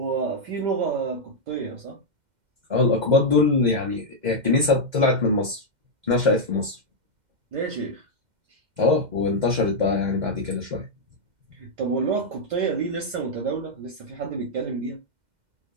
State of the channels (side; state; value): left; late; 2.1 ms